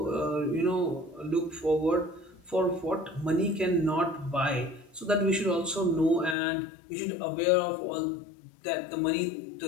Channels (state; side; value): drops out; right; at 6.4 s